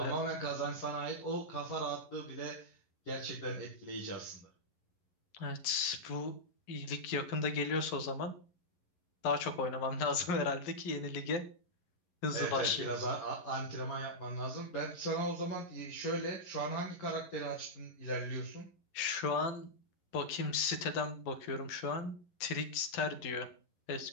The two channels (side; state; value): right; late; 11 ms